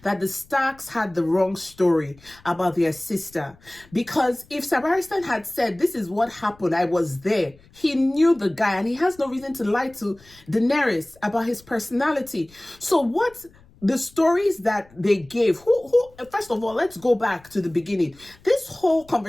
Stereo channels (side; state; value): left; noise; rumble, 27 dB below the sound